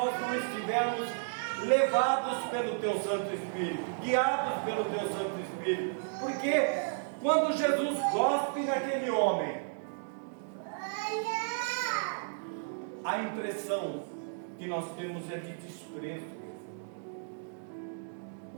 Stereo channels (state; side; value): silent; left; digital silence